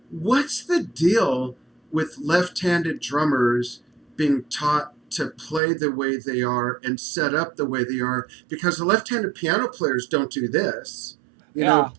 what's the deal with left-handed drummers being taught to play the way they are and set up the way they are? Because the left-handed piano players don't do this. You know,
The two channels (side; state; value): left; drops out; at 5.6 s